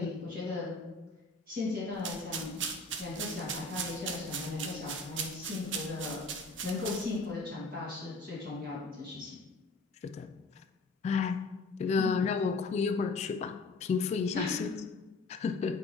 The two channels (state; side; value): quieter; right; 3.3 dB